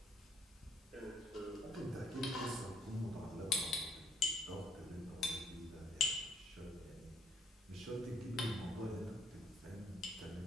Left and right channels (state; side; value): normal; both; correlation 0.66